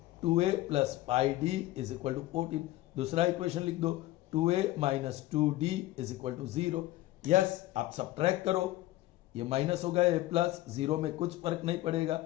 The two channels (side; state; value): right; quieter; 16.6 dB